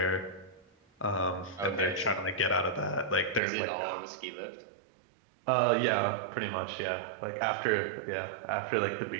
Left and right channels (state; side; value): drops out; left; at 3.4 s